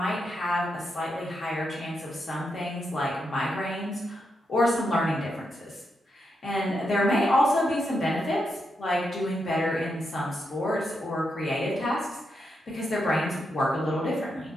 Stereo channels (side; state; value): both; normal; correlation 0.83